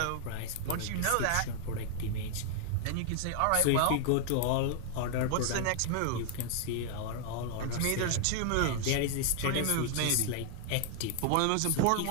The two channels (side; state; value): both; different; correlation 0.00